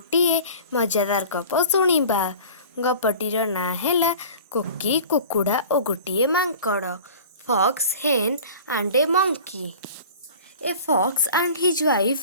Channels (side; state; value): both; inverted; correlation -0.41